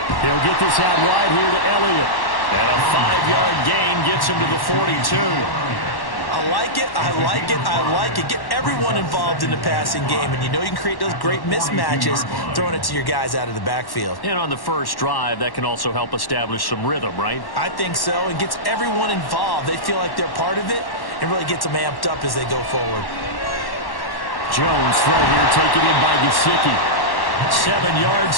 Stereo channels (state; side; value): late; right; 1.1 ms